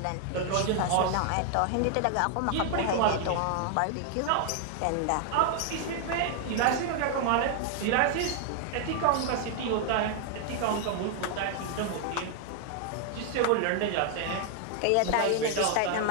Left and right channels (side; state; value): both; different; correlation 0.00